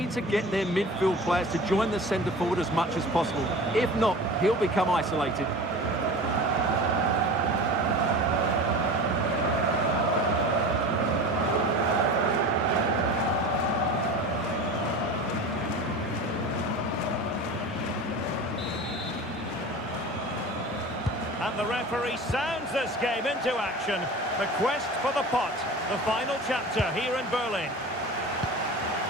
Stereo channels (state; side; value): normal; both; correlation 0.35